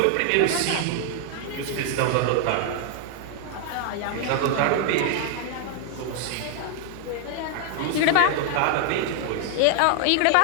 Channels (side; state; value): both; different; correlation 0.00